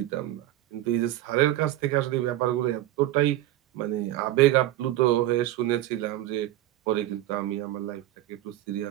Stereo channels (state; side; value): quieter; left; 14.4 dB